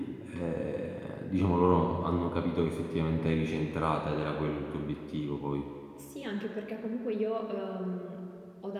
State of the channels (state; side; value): identical; both; correlation 1.00